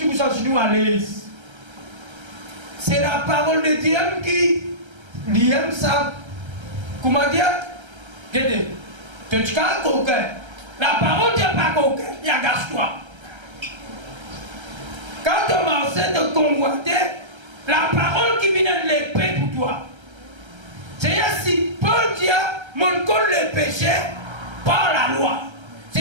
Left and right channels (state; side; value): late; left; 1.3 ms